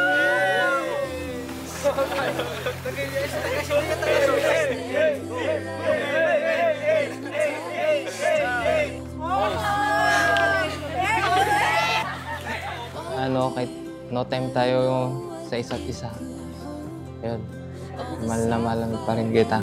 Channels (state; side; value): identical; both; correlation 1.00